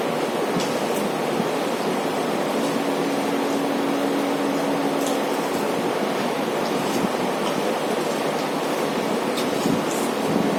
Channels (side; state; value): both; identical; correlation 1.00